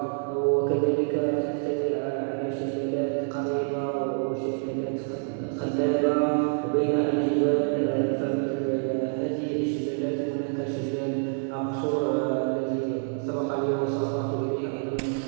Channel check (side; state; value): left; silent; 60 dB below the other